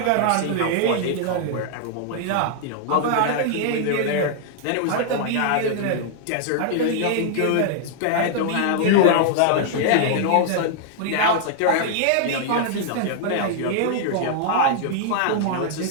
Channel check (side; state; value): both; different; correlation -0.01